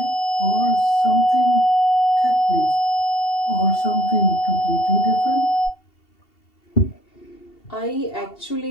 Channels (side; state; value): right; late; 2.7 ms